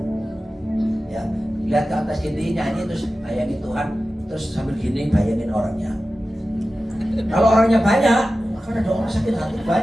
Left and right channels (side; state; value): both; normal; correlation 0.94